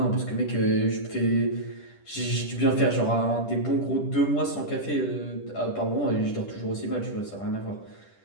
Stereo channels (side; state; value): right; late; 10 ms